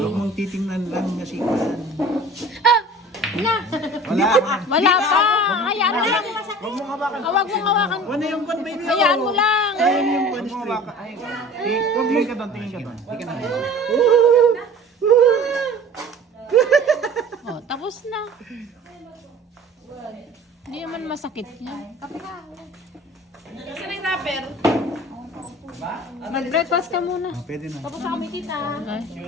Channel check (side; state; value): both; normal; correlation 0.43